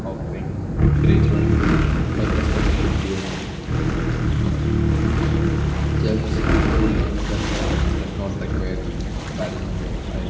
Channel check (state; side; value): identical; both; correlation 1.00